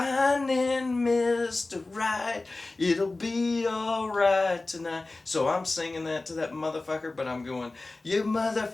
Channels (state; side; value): quieter; right; 3.2 dB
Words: Mr. Right, it'll be alright tonight. So I'm singing that to that motherfucker, but I'm going, you